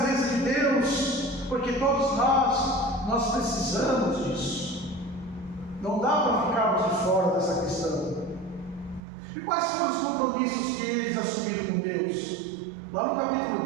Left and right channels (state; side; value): drops out; left; at 9.0 s